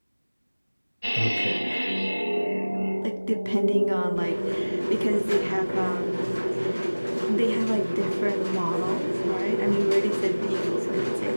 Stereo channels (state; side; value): inverted; both; correlation -1.00